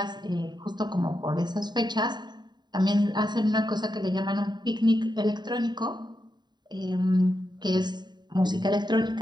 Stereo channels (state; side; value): late; left; 0.21 ms